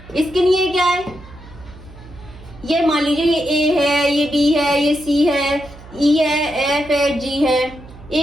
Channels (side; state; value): right; noise; hum, 19 dB below the sound